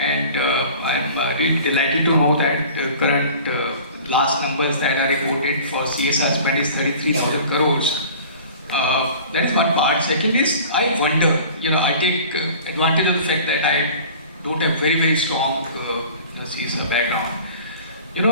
I'm really delighted to know that the current last numbers that are reported for CSR spend is 33,000 crores. That's one part. Second is, I wonder, I take advantage of the fact that I don't have very strong CSR background.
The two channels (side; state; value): both; inverted; correlation -0.44